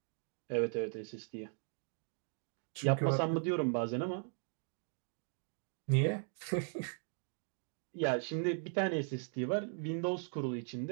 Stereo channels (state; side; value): silent; left; 52 dB below the other